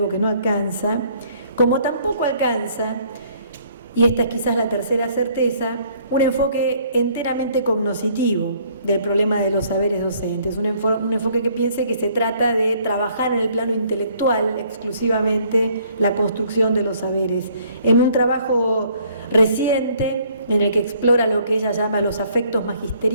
que no alcanza. Como tampoco alcanza, y esta es quizás la tercera certeza, un enfoque enteramente cognoscitivo del problema de los saberes docentes, un enfoque que piense que se trata de trabajar en el plano intelectual exclusivamente la construcción de los saberes. En un trabajo reciente en el que explora lo que ella llama los afectos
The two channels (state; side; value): inverted; both; correlation -0.62